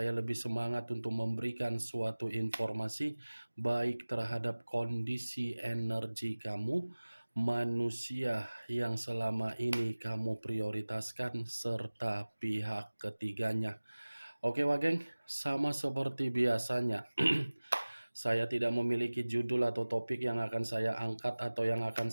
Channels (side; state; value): both; inverted; correlation -1.00